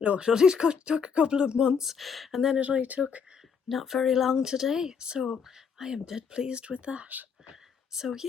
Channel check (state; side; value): quieter; right; 6.3 dB